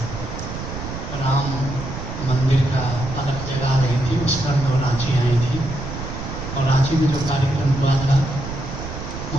राम मंदिर का अलग जगह रही थी, उस पर वो रांची आई थी और रांची में जो कार्यक्रम हुआ था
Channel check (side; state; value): right; noise; rumble, 8 dB below the sound